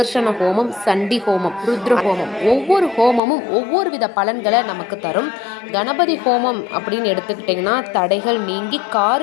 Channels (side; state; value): right; drops out; at 3.2 s